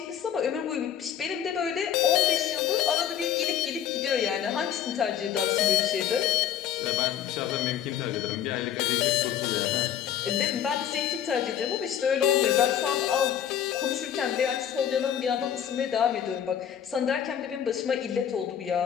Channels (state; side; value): quieter; right; 9.6 dB